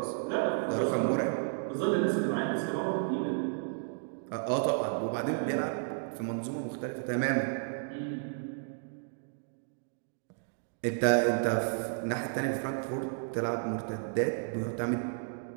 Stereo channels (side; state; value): left; silent; digital silence